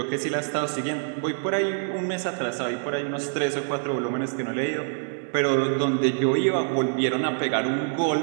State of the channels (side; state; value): left; silent; digital silence